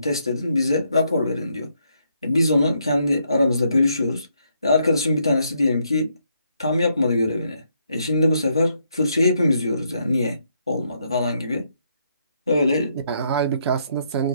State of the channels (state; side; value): inverted; both; correlation -0.75